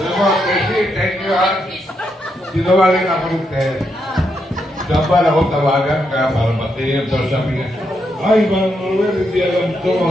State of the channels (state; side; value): normal; both; correlation 0.81